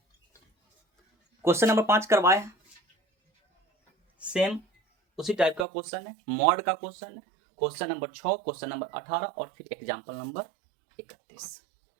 question number 5 करवाए हैं, सेम उसी टाइप का क्वेश्चन है, मॉड का क्वेश्चन है। क्वेश्चन नंबर 6, क्वेश्चन नंबर 18 और फिर एग्जाम्पल नंबर 31।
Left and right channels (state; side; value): drops out; left; at 5.7 s